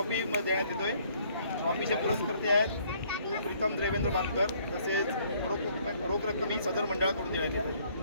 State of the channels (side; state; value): both; inverted; correlation -0.63